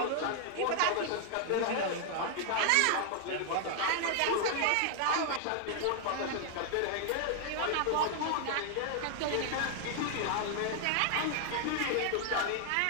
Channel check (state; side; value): different; both; correlation 0.00